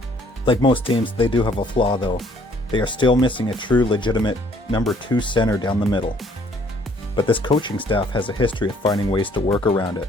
Like most teams, they do have a flaw though. They are still missing a true, legitimate number 2 center down the middle. But this coaching staff has a history of finding ways to work around it.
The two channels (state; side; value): normal; both; correlation 0.61